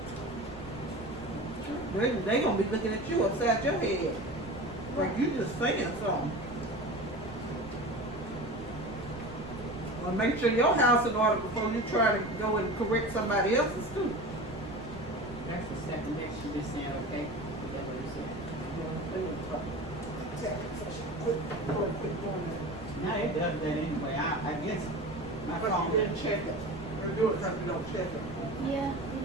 They gonna be looking at you upside your head, like you just saying something. Well, make sure your house in order before you try to go and correct somebody else's too. That's the second next you just saying okay. Is that what you said? Quit doing that. Now it does that anyway. I guess my But phone you didn't check it. You do it because you don't check it. Yeah, you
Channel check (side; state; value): right; noise; rumble, 16 dB below the sound